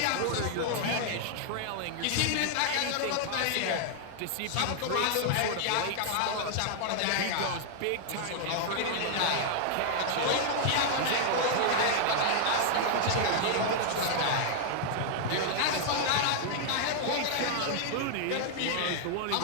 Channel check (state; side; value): different; both; correlation 0.00